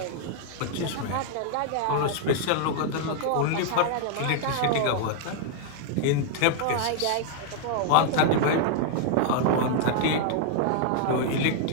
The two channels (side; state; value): both; different; correlation 0.00